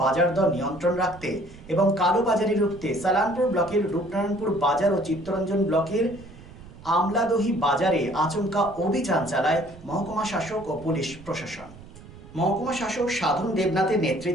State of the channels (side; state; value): right; noise; rumble, 18 dB below the sound